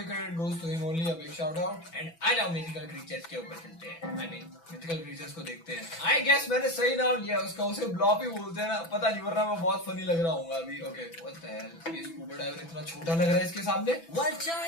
credit goes to him only. A big shout out. And आ जाओ मिथिकल क्रीचर्स के ऊपर चलते हैं। आई मीन मिथिकल क्रीचर्स को देखते हैं। आई गेस मैंने सही नाम लिया उसका, उसे ब्लॉप ही बोलते हैं ना, पता नहीं, वरना मैं बहुत फनी लग रहा हूँ अभी। ओके, व्हाट द हेल, ये स्कूबा डाइवर इतना छोटा लग रहा है इसके सामने। वह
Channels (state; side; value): late; right; 6.0 ms